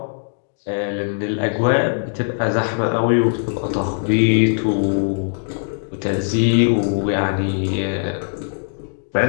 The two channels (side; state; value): right; silent; digital silence